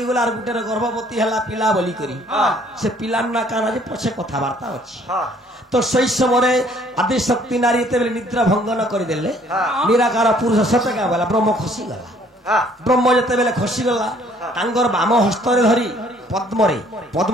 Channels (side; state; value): both; normal; correlation 0.60